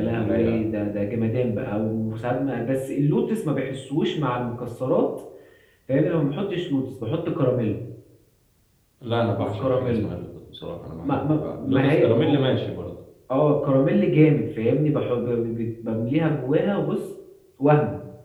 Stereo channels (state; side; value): identical; both; correlation 1.00